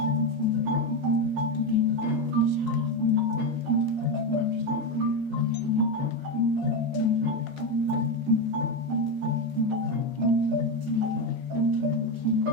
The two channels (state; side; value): normal; both; correlation 0.12